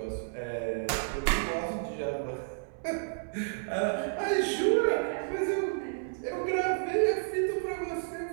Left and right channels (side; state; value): left; silent; 57 dB below the other